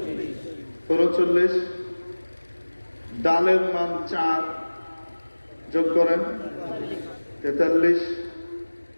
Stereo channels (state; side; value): inverted; both; correlation -1.00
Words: ৩৪। ডালের মান ৪, যোগ করেন ৪৩।